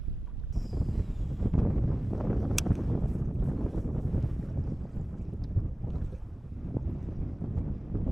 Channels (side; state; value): both; normal; correlation 0.97